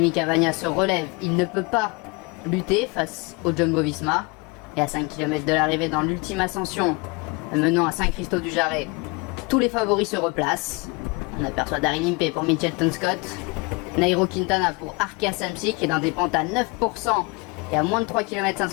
Cavagna se relève, il ne peut pas lutter face au Jumbo-Visma. Et à 5 km de l'arrivée dans l'ultime ascension menant à Saint-Christophe-du-Jarret, tous les favoris se replacent. On aperçoit Daryl Impey pour Mitchelton Scott, Nairo Quintana pour Arkea Samsic qui est dans des pentes à 9% et à moins de 3 km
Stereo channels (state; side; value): quieter; right; 28.3 dB